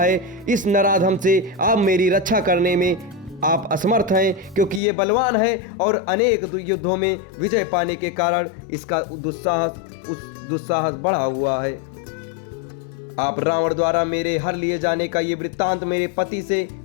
इस नराधम से आप मेरी रक्षा करने में आप असमर्थ हैं, क्योंकि ये बलवान है और अनेक युद्धों में विजय पाने के कारण इसका दुस्साहस बढ़ा हुआ है। आप रावण द्वारा मेरे हर लिए जाने का ये वृत्तांत मेरे पति से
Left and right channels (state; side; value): drops out; right; at 4.8 s